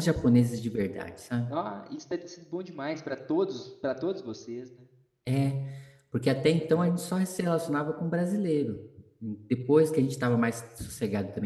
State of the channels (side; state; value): both; identical; correlation 1.00